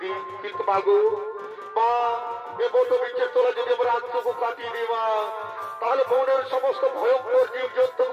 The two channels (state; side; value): identical; both; correlation 1.00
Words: দিই। কিন্তু মাগো মা, এ বট বৃক্ষের তলে যদি আমরা রাতটুকু কাটিয়ে দিই মা, তাহলে বনের সমস্ত ভয়ঙ্কর জীব জন্তু